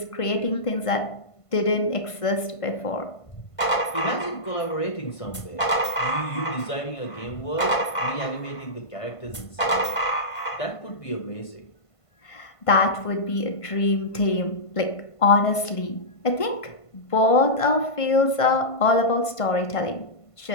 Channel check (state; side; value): late; right; 1.5 ms